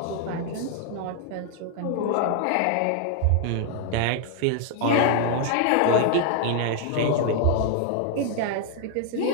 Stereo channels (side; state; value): both; different; correlation 0.00